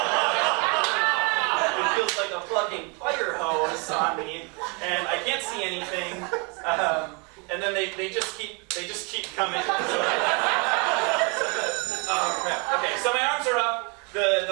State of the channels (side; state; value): left; quieter; 32.9 dB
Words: It feels like a fucking fire hose on me, and I can't see anything. And then they just keep coming. Oh crap! Okay, so my arms are up.